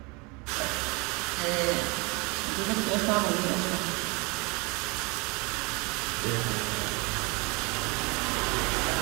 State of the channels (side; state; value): left; quieter; 28.4 dB